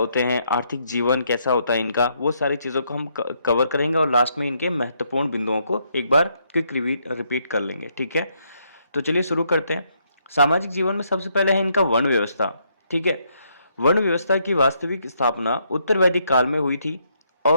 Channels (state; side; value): inverted; both; correlation -0.74